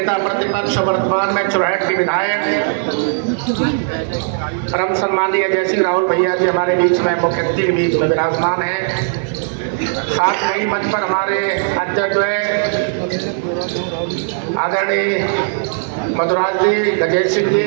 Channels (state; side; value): silent; left; 59 dB below the other